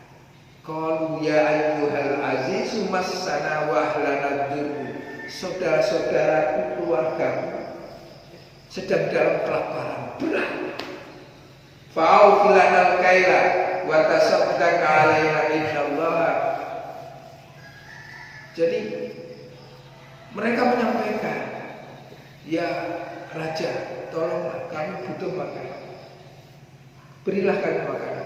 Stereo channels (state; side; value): identical; both; correlation 1.00